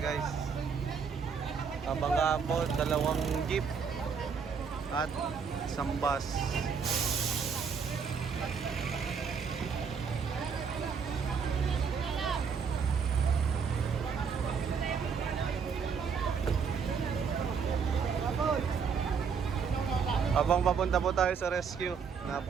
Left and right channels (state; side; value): quieter; left; 6.2 dB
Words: Kabangga po, 2 jeep at isang bus. Habang papunta po tayo sa rescue,